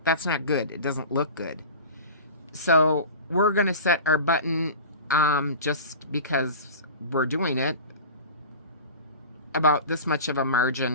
that's not good. It doesn't look good. So we're going to set our button, just because we're doing it, about this much of a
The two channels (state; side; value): inverted; both; correlation -0.34